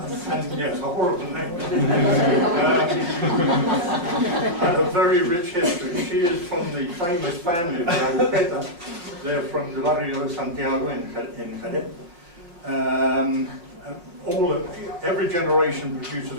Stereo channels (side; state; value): left; late; 5.6 ms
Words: yes, a horrible name. And a very rich history. She is from the famous family of the Agujeta. They're from the barrio de Santiago in Jerez. Every generation produces